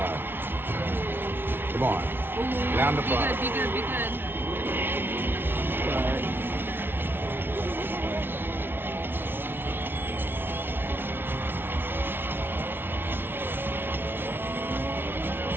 Come on. Down the front. Be good, be good. Sorry.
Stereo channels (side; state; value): left; late; 0.10 ms